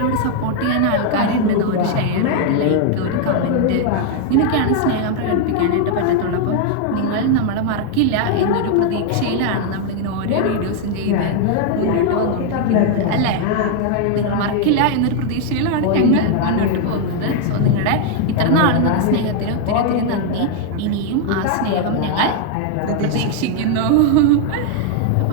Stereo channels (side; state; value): both; different; correlation 0.00